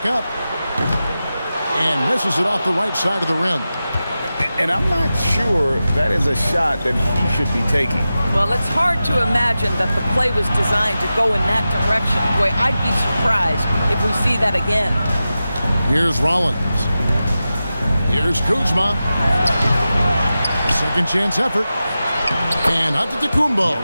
up. And misses it off the right side of the rim. And I'm not sure that is a shot that he should be taking. Well, it's hard to imagine that the play was designed to go in that direction. Boy, I'd be surprised if we see that again. Here's Rollins. Here's Kuzma. Second chance effort. And Antetokounmpo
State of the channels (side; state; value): both; inverted; correlation -0.93